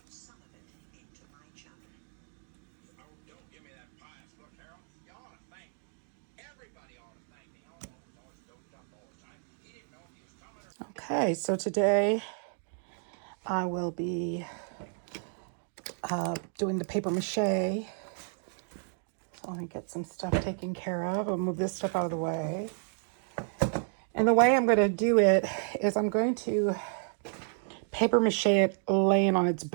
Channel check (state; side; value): silent; left; 56 dB below the other